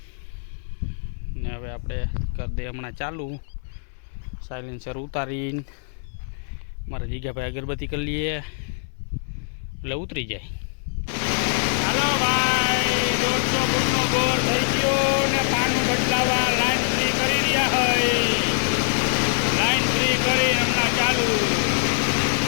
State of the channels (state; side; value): silent; right; 63 dB below the other